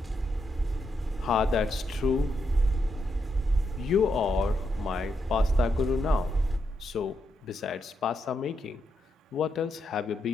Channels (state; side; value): normal; both; correlation 0.82